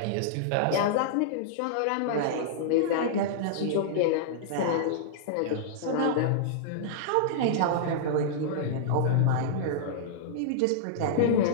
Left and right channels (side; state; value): both; different; correlation -0.02